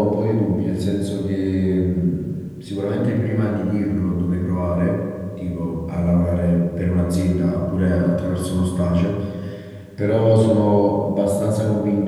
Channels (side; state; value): both; identical; correlation 1.00